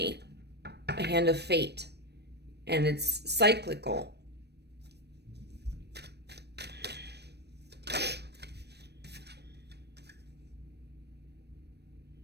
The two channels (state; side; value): late; left; 0.48 ms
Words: a hand of fate, and it's cyclical.